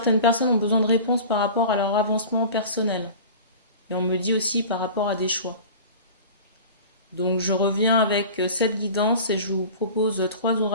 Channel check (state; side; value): inverted; both; correlation -0.37